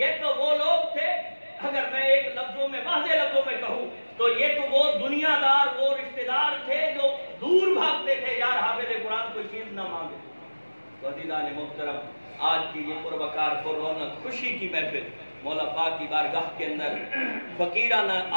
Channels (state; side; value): inverted; both; correlation -1.00